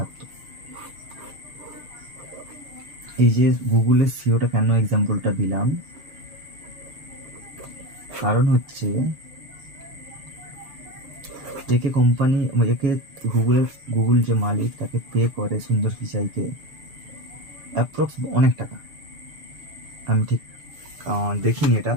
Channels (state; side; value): late; left; 6.8 ms